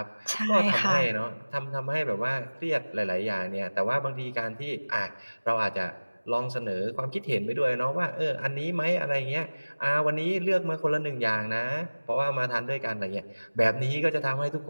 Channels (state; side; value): inverted; both; correlation -1.00